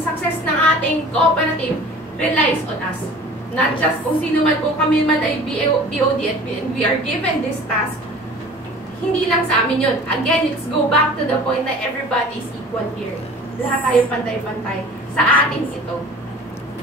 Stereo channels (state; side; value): normal; both; correlation 0.43